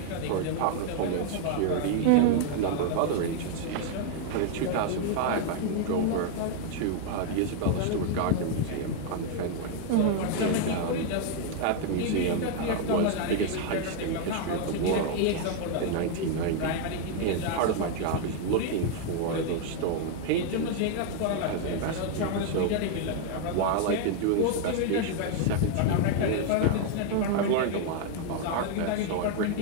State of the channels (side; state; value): both; different; correlation 0.00